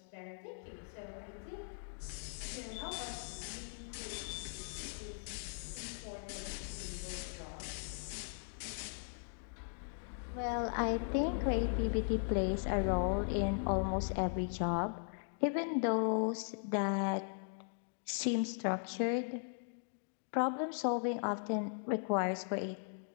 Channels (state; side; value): silent; right; digital silence